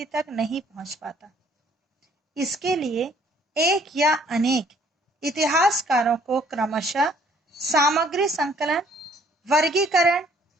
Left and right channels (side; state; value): both; normal; correlation 0.61